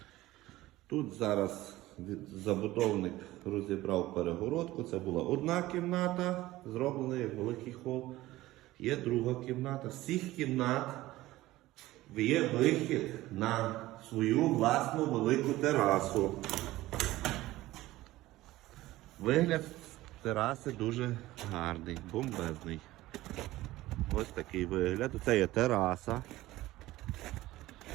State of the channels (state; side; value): quieter; left; 17.1 dB